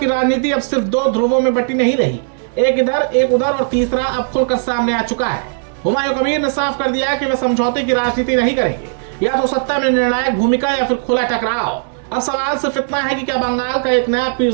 राजनीति अब सिर्फ 2 ध्रुवों में बटी नहीं रही, एक इधर एक उधर, और तीसरा अब खुलकर सामने आ चुका है। हुमायूं कबीर ने साफ कर दिया कि वे समझौते की राजनीति नहीं करेंगे, या तो सत्ता में निर्णायक भूमिका या फिर खुला टकराव। अब सवाल सिर्फ इतना है कि क्या बंगाल का एक नया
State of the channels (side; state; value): left; silent; digital silence